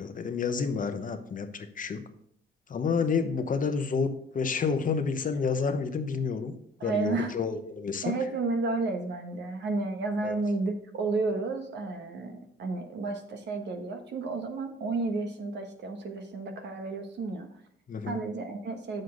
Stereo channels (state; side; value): normal; both; correlation 0.51